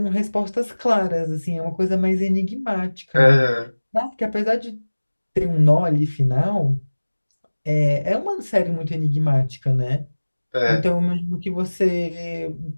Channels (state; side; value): inverted; both; correlation -1.00